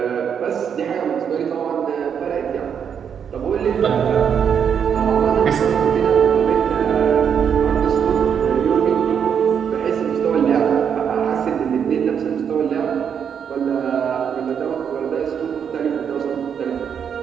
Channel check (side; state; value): left; quieter; 7.7 dB